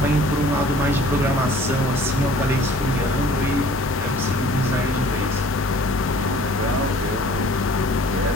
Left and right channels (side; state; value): both; normal; correlation 0.51